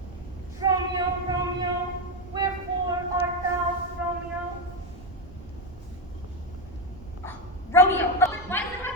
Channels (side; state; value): right; noise; rumble, 18 dB below the sound